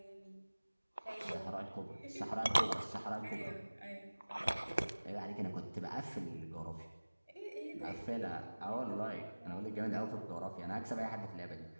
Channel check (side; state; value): both; inverted; correlation -1.00